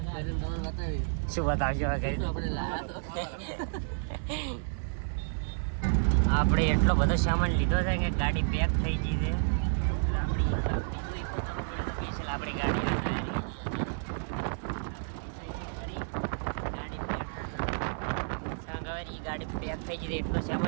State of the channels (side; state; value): left; silent; 57 dB below the other